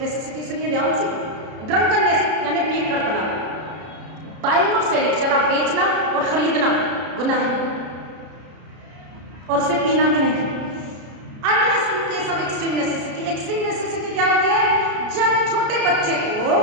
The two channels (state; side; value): late; left; 33 ms